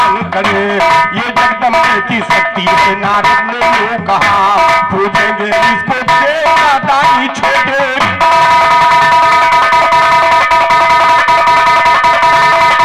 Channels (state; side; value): identical; both; correlation 1.00